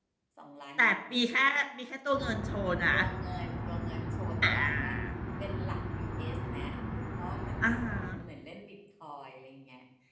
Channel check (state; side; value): identical; both; correlation 1.00